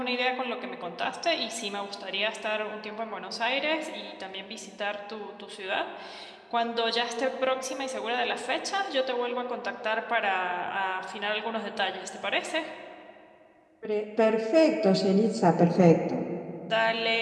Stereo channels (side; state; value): both; identical; correlation 1.00